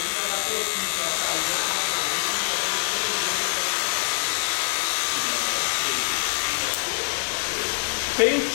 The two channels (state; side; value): silent; right; 62 dB below the other